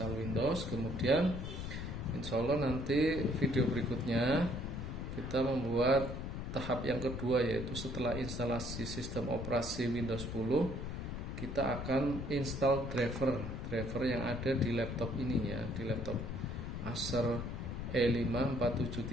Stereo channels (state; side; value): noise; left; rumble, 5 dB below the sound